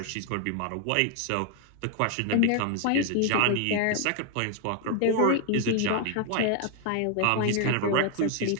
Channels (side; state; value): both; different; correlation 0.00